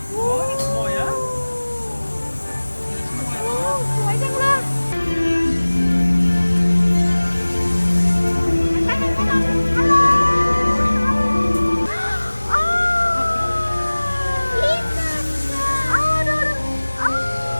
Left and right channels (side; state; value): both; inverted; correlation -1.00